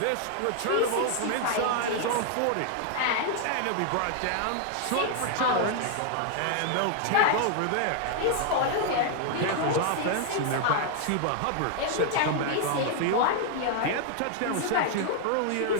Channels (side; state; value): both; different; correlation 0.00